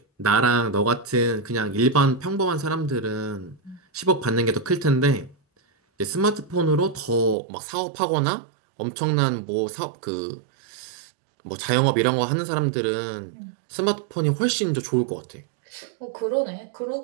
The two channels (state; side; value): drops out; left; at 7.4 s